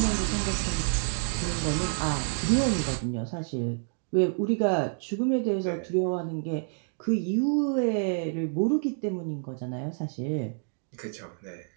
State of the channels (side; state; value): left; silent; digital silence